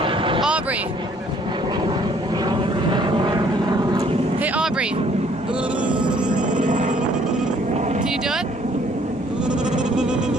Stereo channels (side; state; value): both; normal; correlation 0.61